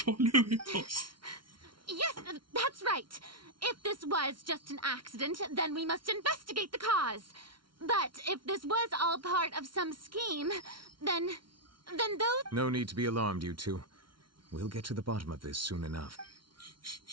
Yes, that's right. If this was just an accident, then we must investigate the cause. But if this was all part of some scheme, then those... No need to be alarmed, you two. We'll get to the bottom of this soon enough.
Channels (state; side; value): late; left; 0.73 ms